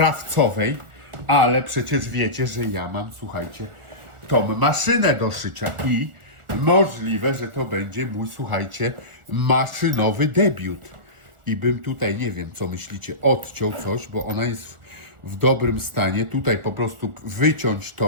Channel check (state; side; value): late; left; 1.4 ms